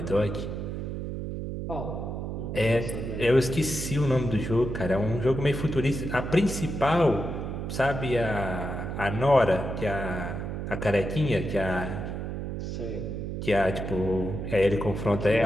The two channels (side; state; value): right; noise; hum, 5 dB below the sound